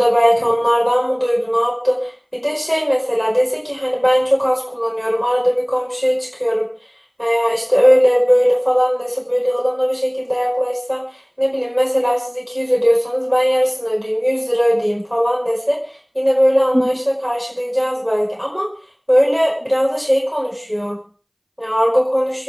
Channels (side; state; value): both; identical; correlation 1.00